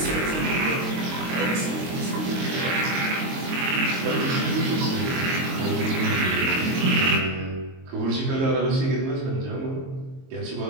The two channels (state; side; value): late; left; 22 ms